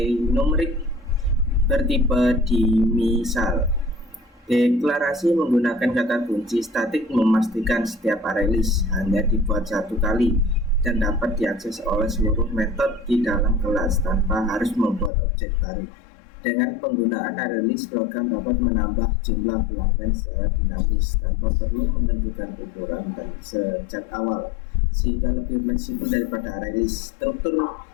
numerik bertipe dimisal. Deklarasi menggunakan kata kunci statik memastikan setiap array list hanya dibuat satu kali dan dapat diakses oleh seluruh metode di dalam kelas tanpa harus membuat objek baru. Dengan penggunaan array list, program dapat menambah jumlah pelanggan secara dinamis tanpa perlu menentukan ukuran dan sejak awal, sehingga lebih fleksibel daripada array list. Struktur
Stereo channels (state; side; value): drops out; right; at 15.1 s